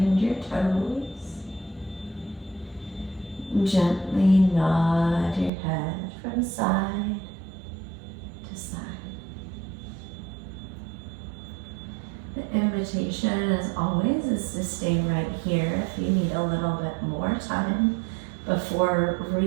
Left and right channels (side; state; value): left; drops out; at 5.5 s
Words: your toes. Gently nod your head from side to side. The invitation, as always, is to stay right here if you need a little bit more time before